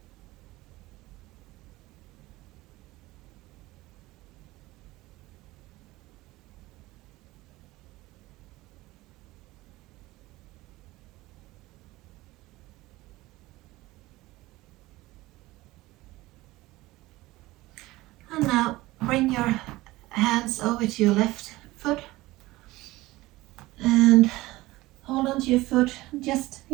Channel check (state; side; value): quieter; left; 19.0 dB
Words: And now bring your hands over to your left foot and hold on to your foot. Just